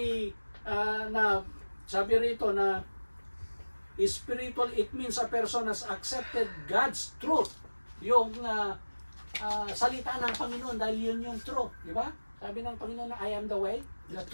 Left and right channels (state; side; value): inverted; both; correlation -1.00